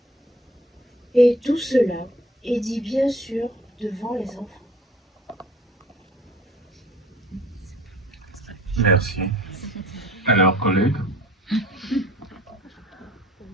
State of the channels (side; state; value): both; normal; correlation 0.49